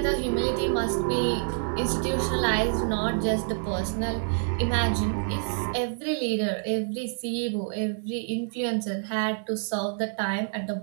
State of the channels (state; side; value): silent; left; digital silence